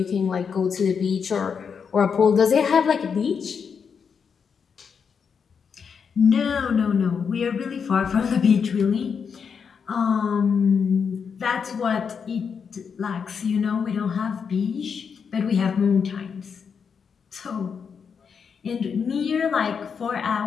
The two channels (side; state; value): right; quieter; 6.4 dB